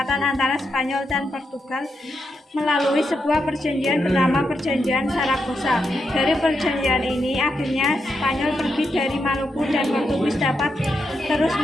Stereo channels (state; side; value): normal; both; correlation 0.83